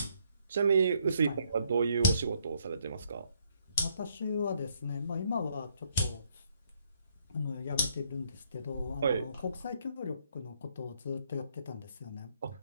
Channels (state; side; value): inverted; both; correlation -0.70